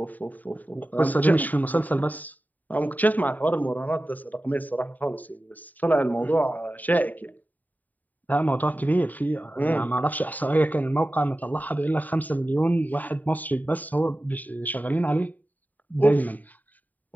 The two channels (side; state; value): right; late; 0.082 ms